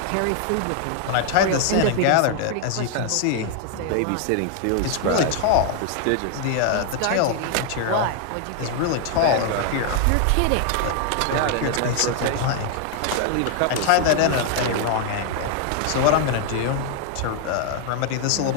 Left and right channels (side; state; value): both; different; correlation 0.00